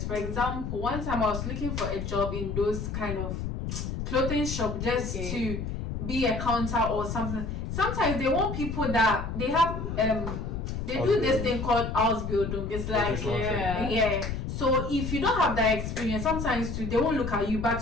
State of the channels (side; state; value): left; noise; rumble, 4 dB below the sound